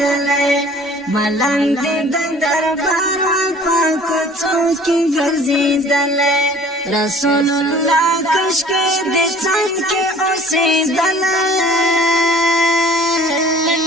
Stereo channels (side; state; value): both; normal; correlation 0.50